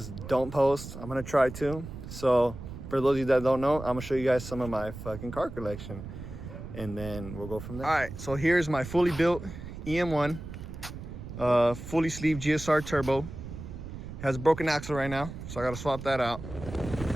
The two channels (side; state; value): right; noise; rumble, 10 dB below the sound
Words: don't post. I'm gonna try to. So for those of you that don't know, I'm gonna show you guys some of my fucking car collection, and then we'll go from there. All right, so here's my fully built EM1, fully sleeved GSR turbo. It has a broken axle right now, so I gotta swap that out.